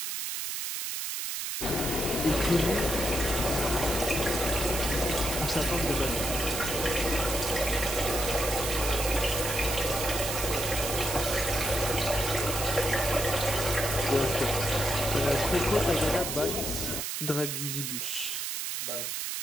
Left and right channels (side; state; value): right; noise; hiss, 3 dB below the sound